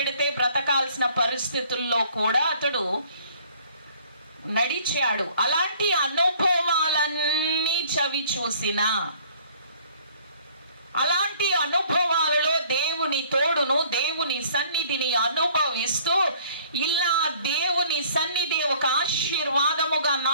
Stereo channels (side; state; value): both; inverted; correlation -0.57